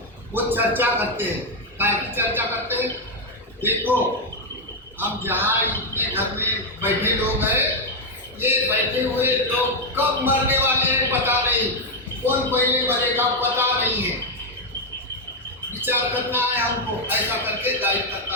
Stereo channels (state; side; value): normal; both; correlation 0.02